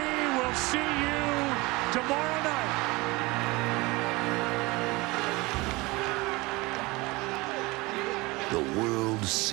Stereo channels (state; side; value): quieter; left; 23.2 dB